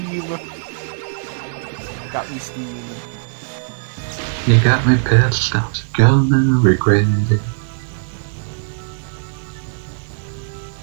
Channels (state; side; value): silent; left; 57 dB below the other